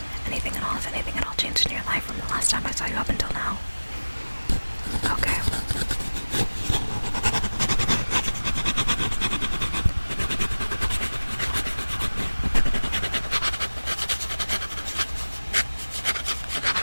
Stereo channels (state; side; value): inverted; both; correlation -1.00